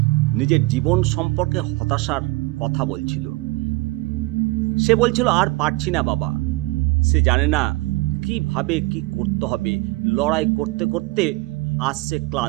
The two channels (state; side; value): quieter; left; 22.3 dB